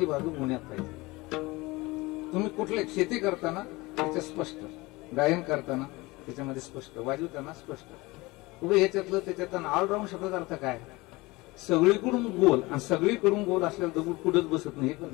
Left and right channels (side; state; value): right; quieter; 22.3 dB